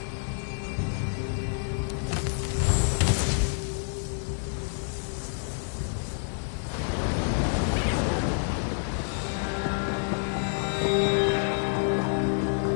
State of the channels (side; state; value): right; silent; digital silence